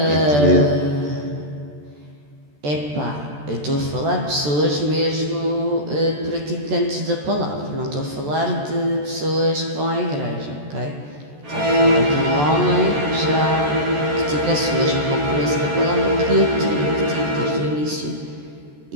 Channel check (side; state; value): left; late; 14 ms